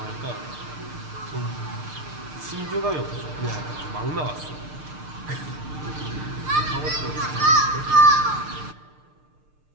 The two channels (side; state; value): left; late; 6.6 ms